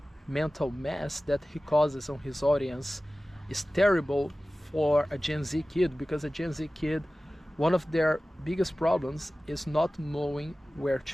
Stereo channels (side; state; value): both; normal; correlation 0.96